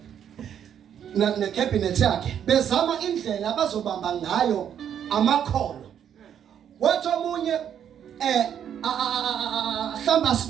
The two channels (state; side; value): quieter; left; 9.1 dB